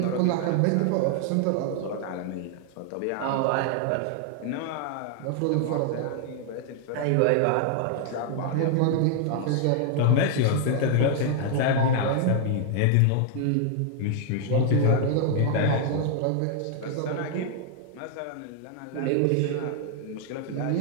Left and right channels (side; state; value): both; different; correlation 0.00